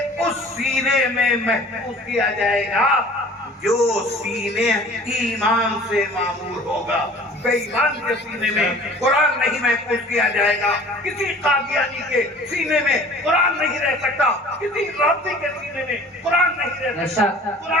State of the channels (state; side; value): normal; both; correlation 0.47